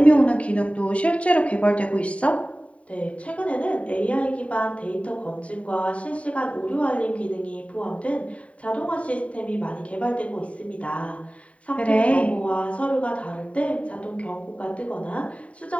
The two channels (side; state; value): right; late; 0.065 ms